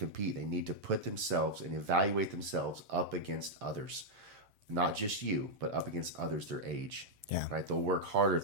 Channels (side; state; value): left; late; 7.6 ms